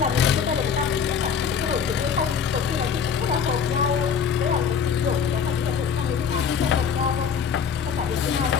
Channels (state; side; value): quieter; right; 6.8 dB